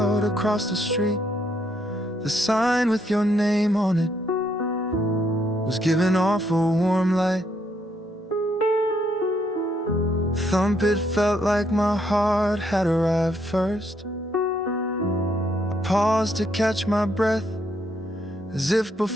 across the street. The sign with your name on it was giving off a warm light. Thump, it felt like my heart had arrived first. I paused to catch my breath, as if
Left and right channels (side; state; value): both; normal; correlation 0.73